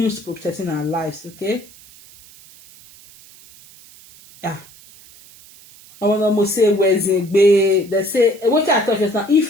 protecting our lives. Okay. Yeah. I want to say they say what I thought just now.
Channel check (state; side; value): noise; right; hiss, 23 dB below the sound